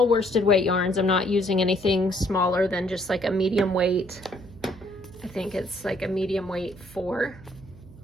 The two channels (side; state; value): right; noise; hum, 20 dB below the sound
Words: worsted weight yarns. I'm not using anything smaller than just like a medium weight. I think it's like a medium weight 4.